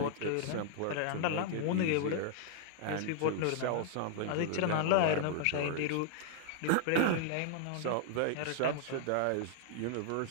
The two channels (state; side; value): different; both; correlation -0.01